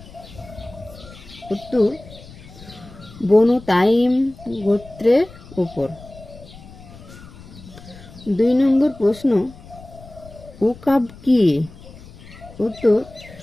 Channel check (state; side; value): noise; left; rumble, 19 dB below the sound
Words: উত্তর, বনু তাইম গোত্রের উপর। 2 নম্বর প্রশ্ন, উকাব কি? উত্তর,